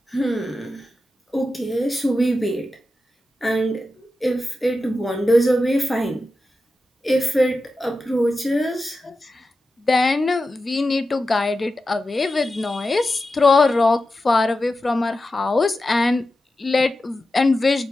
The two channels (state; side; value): normal; both; correlation 0.91